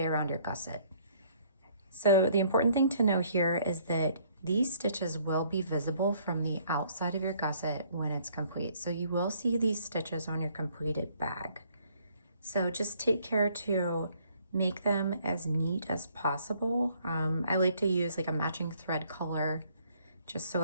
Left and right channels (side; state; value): both; inverted; correlation -0.62